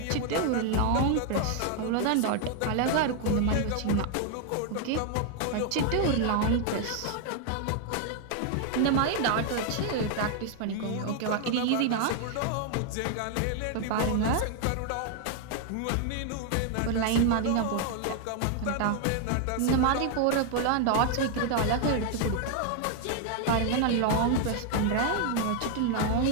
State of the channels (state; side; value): different; both; correlation 0.00